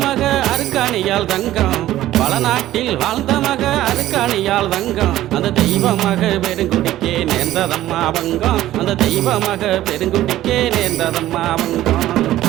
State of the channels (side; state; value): left; quieter; 14.3 dB